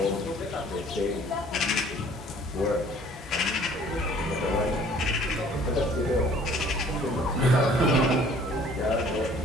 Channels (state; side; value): normal; both; correlation 0.54